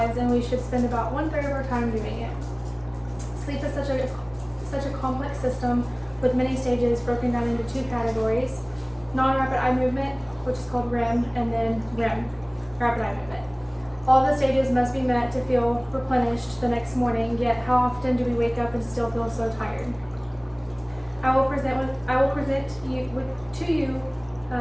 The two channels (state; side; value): identical; both; correlation 1.00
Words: and we should spend about 1/3 of our time doing it. Sleep is such a complex system with many stages broken down into two categories: non-rapid eye movement, which is called REM, and then REM, rapid eye movement. All the stages must be met to feel replenished the next morning, yet how often do we wake up and still feel so tired? I will present to you